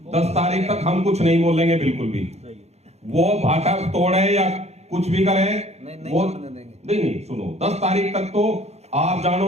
10 तारीख तक हम कुछ नहीं बोलेंगे बिल्कुल भी। वो भाटा तोड़े या कुछ भी करे, वो नहीं सुनो, 10 तारीख तक तो आप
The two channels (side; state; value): left; late; 0.31 ms